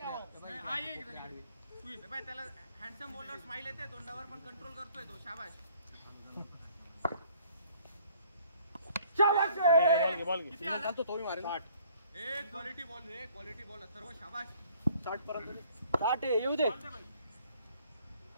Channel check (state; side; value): inverted; both; correlation -0.58